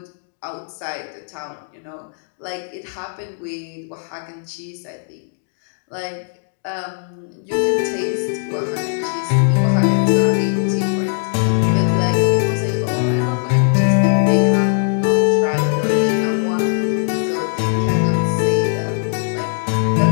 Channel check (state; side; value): silent; right; 66 dB below the other